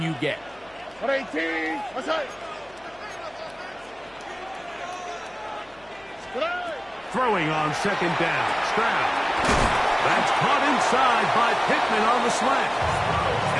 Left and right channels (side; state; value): left; noise; hum, 29 dB below the sound